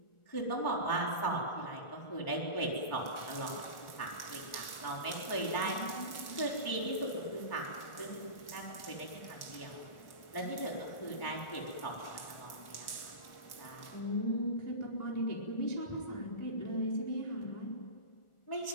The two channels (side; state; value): right; late; 1.4 ms